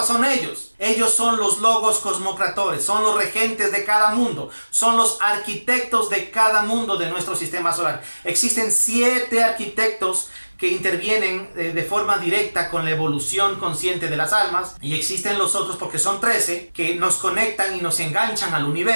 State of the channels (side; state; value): both; inverted; correlation -1.00